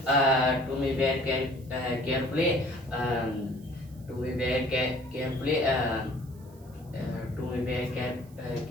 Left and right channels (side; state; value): right; noise; hiss, 28 dB below the sound